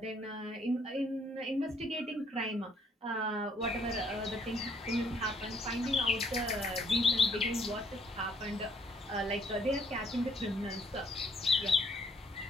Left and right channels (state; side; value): normal; both; correlation 0.66